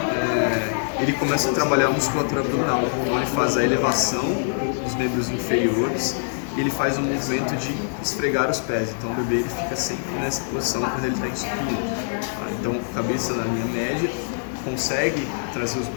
ele começa a trabalhar a musculatura abdominal. Então, ele faz a elevação dos membros inferiores e ele faz o movimento de esfregar os pés. Então, o bebê ele fica sempre nessa posição quando ele está em supino. Então, cabeça na linha média, consegue trazer os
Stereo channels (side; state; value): right; silent; digital silence